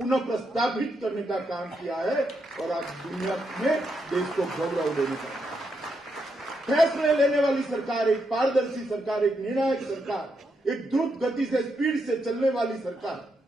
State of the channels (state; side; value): normal; both; correlation 0.81